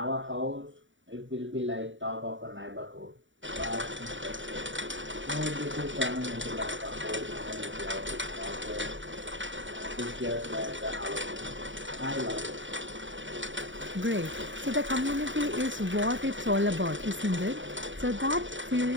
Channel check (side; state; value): left; late; 0.55 ms